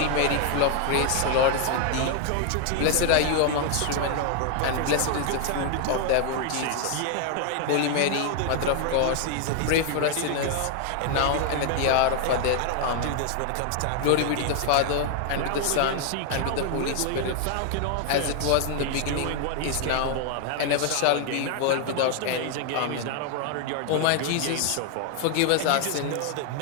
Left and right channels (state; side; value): different; both; correlation 0.00